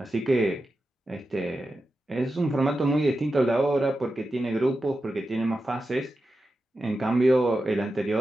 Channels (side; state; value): both; normal; correlation 0.91